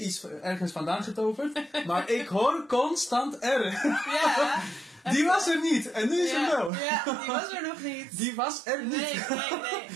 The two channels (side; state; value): left; drops out; at 6.7 s